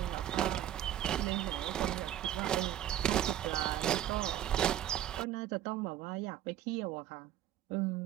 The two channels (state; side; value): quieter; left; 11.9 dB